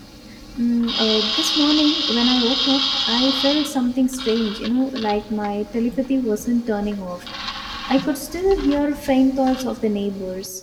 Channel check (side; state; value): both; identical; correlation 1.00